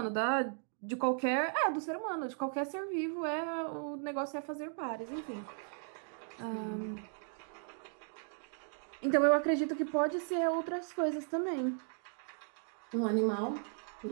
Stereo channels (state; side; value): silent; left; 54 dB below the other